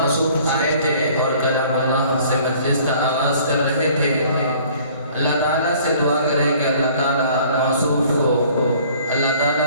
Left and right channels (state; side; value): inverted; both; correlation -0.54